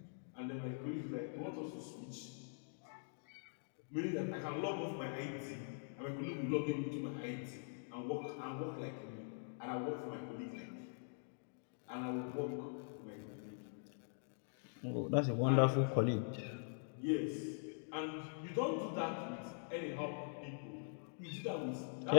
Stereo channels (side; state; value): right; silent; digital silence